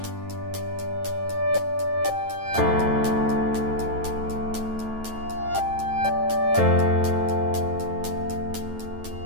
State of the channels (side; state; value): left; late; 9.2 ms